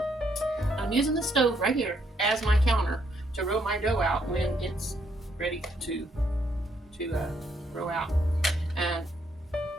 I'm using the stove right here as my counter to roll my dough out when it's ready to roll out. And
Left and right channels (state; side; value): normal; both; correlation 0.73